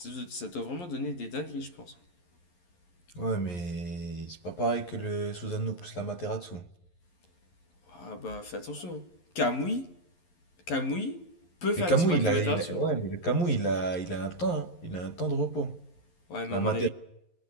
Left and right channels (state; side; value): late; right; 11 ms